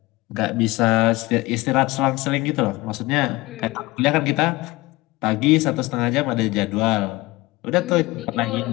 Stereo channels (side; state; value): right; quieter; 21.1 dB